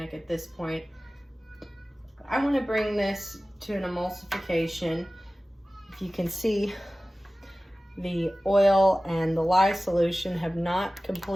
at this point. I want to bring this to an emulsification. If you can see, the oil and the lye solution have not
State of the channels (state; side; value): normal; both; correlation 0.96